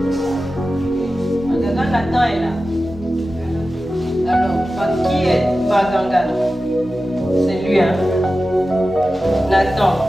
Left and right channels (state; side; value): normal; both; correlation 0.94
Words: Magaga Nathan est là. Alors, qui est Baganga? C'est lui, hein? Nathan,